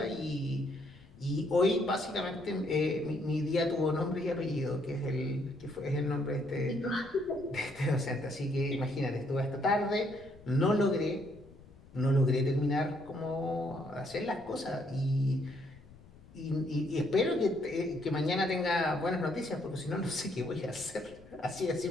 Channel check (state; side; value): noise; left; rumble, 22 dB below the sound